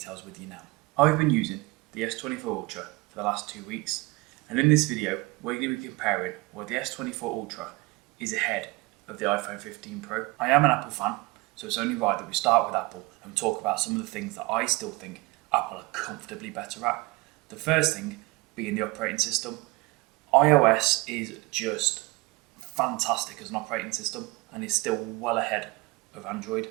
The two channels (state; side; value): quieter; left; 23.4 dB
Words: with you now. I've been using the S24 Ultra for the last 2 weeks, and in this video we're going to be comparing where the S24 Ultra is ahead of the iPhone 15 Pro. I am an Apple fan, so it's only right that we start with Apple and talk about some of the things that I still think Apple are comfortably better at. The first thing being the operating system. iOS is just fantastic as an operating system and is still well ahead of Android.